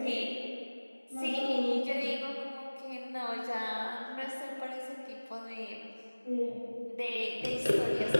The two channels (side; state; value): both; inverted; correlation -1.00